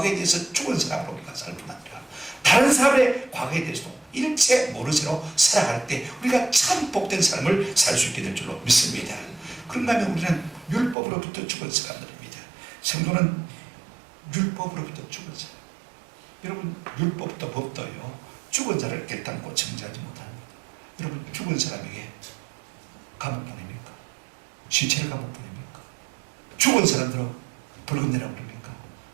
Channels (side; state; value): left; drops out; at 11.0 s